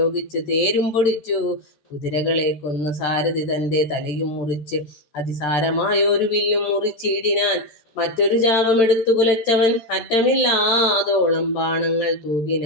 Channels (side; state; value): right; late; 13 ms